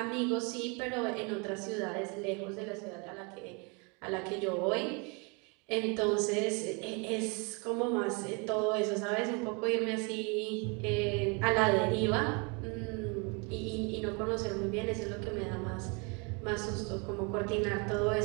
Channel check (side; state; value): left; quieter; 32.1 dB